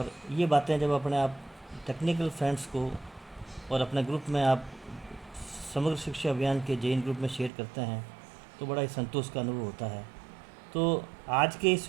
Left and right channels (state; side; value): drops out; left; at 7.5 s